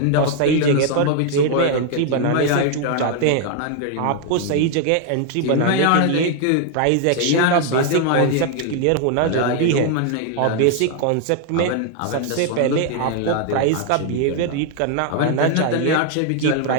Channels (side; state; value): both; different; correlation 0.00